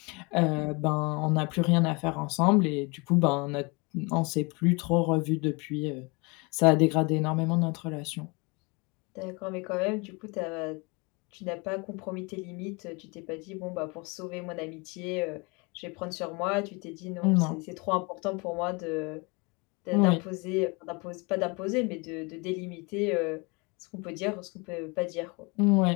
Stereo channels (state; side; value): quieter; right; 29.0 dB